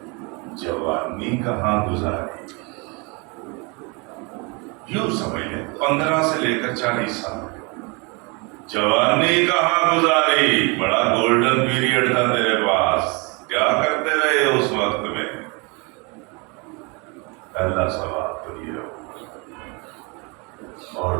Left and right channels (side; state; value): left; quieter; 30.0 dB